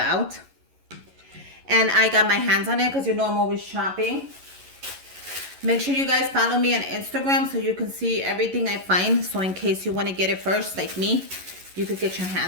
and I got my hands on it because I'm always shopping. Make sure you guys follow me on Instagram so you can see everything I find. So in case you want to get it first, like me, you could get your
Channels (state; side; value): late; left; 11 ms